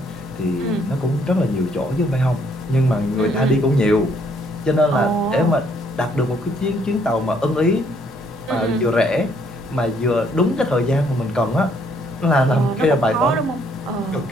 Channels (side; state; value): both; normal; correlation 0.67